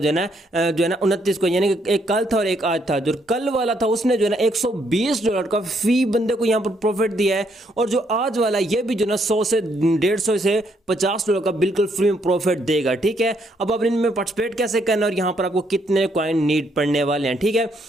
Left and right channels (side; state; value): both; normal; correlation 0.72